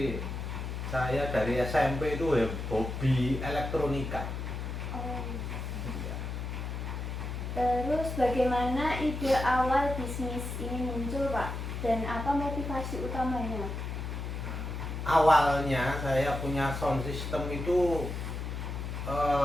saya dari SMP itu hobi elektronika. Oh. Terus bagaimana ide awal bisnis ini muncul, Pak? Dan apa motivasi utamanya? Awalnya saya punya sound system itu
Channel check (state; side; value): noise; left; hum, 5 dB below the sound